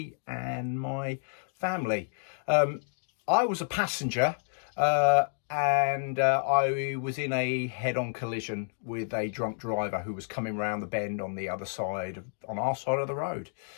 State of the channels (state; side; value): silent; right; digital silence